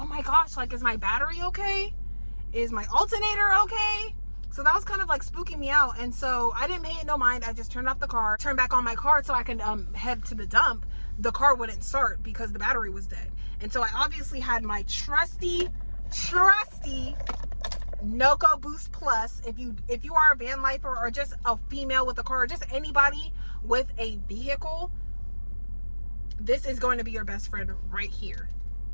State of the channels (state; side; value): inverted; both; correlation -1.00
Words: my gosh, like, is my battery okay? Is my alternator okay? So that was kind of like spooking me out. And so I didn't pay it no mind. I just turned off the car, turned back on my car so I can head to the dump. The car wouldn't start because the battery was dead. And so I obviously had my trusty Noco Boost Plus. If you are a van lifer, or just a female with a car, or just anybody with a vehicle, this is going to be your best friend right here.